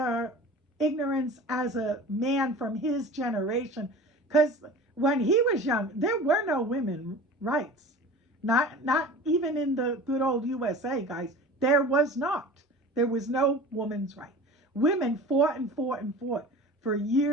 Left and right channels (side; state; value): both; normal; correlation 0.38